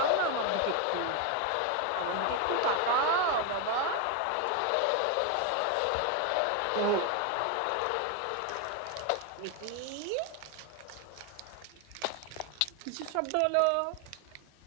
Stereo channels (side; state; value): both; different; correlation 0.01